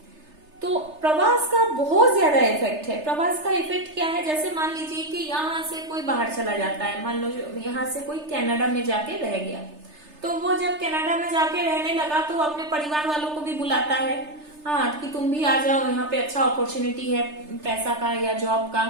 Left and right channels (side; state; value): left; late; 3.3 ms